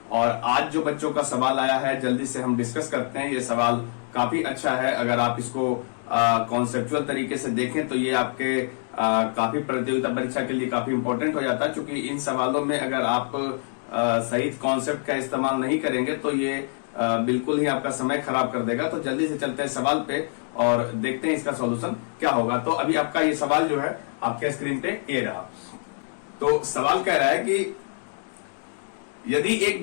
और आज जो बच्चों का सवाल आया है जल्दी से हम डिस्कस करते हैं। ये सवाल काफी अच्छा है। अगर आप इसको कॉन्सेप्चुअल तरीके से देखें तो ये आपके काफी प्रतियोगिता परीक्षा के लिए काफी इंपॉर्टेंट हो जाता है, क्योंकि इन सवालों में अगर आप सही कॉन्सेप्ट का इस्तेमाल नहीं करेंगे तो ये बिल्कुल ही आपका समय खराब कर देगा। तो जल्दी से चलते हैं सवाल पे और देखते हैं इसका सॉल्यूशन क्या होगा। तो अभी आपका ये सवाल जो है आपके स्क्रीन पे ये रहा। तो सवाल कह रहा है कि यदि एक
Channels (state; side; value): silent; right; 61 dB below the other